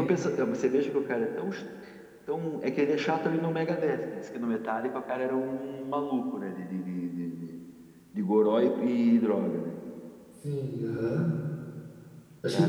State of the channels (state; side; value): identical; both; correlation 1.00